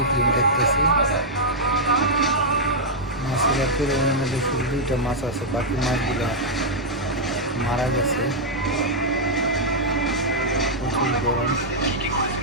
ফিল্ম দেখতেছি। মাছের অ্যাকুরিয়ামের মধ্যে শুধু 2টা মাছ আছে, বাকি মাছগুলো মারা গেছে। প্রচুর গরম।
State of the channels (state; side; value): normal; both; correlation -0.06